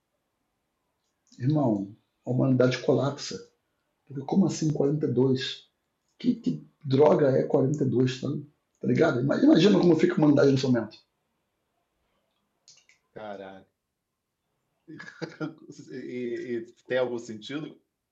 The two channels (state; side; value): identical; both; correlation 1.00